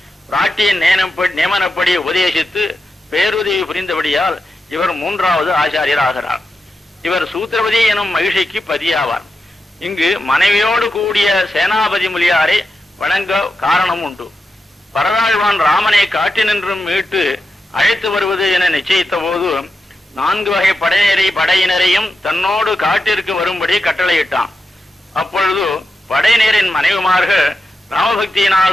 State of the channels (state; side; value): normal; both; correlation 0.88